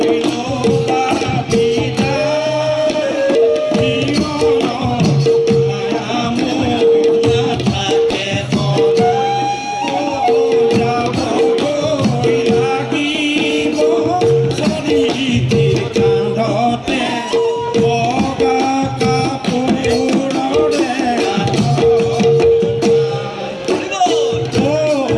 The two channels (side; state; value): both; identical; correlation 1.00